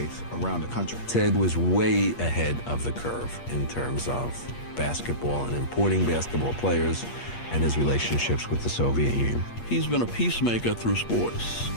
around the country. Ted was way ahead of the curve in terms of basketball and importing basketball players and his relationships with the Soviet Union. He's been a peacemaker through sports.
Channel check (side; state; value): right; late; 8.6 ms